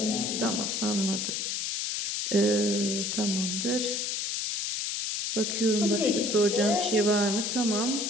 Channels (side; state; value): left; noise; hiss, 1 dB below the sound